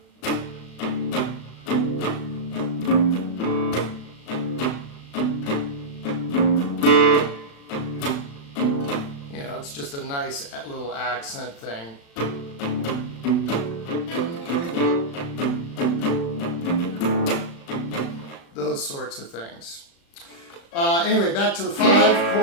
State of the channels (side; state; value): right; late; 36 ms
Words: It's just a nice little accent thing. Those sorts of things. Anyway, back to the 5